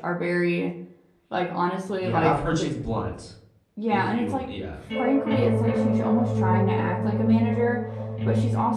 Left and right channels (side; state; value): both; identical; correlation 1.00